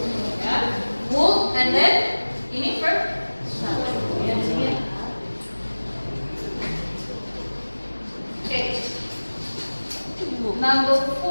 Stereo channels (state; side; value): inverted; both; correlation -1.00